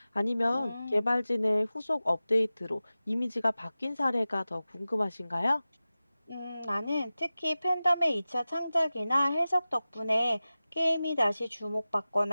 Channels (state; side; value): inverted; both; correlation -0.96